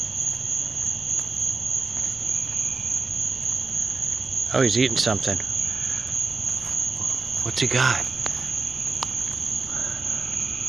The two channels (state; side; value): quieter; left; 4.1 dB